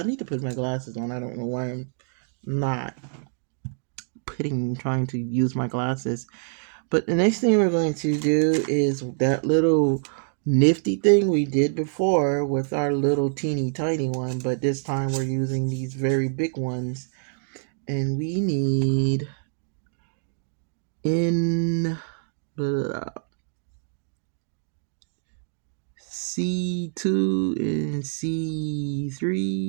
need to put my glasses on. I don't know why I'm not trying to use my glasses. But the next thing we're going to do is that little nifty thing we did before with our little teeny tiny one, but this time we're using these very big ones. And we need in C2 and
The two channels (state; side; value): silent; left; digital silence